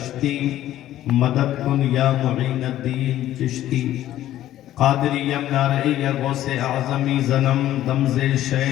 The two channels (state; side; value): quieter; right; 13.2 dB